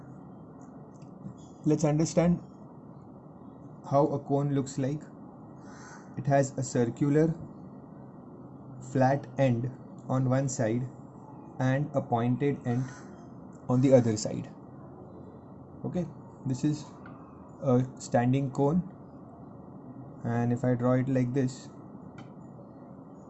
Let's understand how a cone looks like. It has a circular flat end on one side and a pointed end on the other side. Okay, this is a standing cone, and if I draw it like this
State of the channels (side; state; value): both; identical; correlation 1.00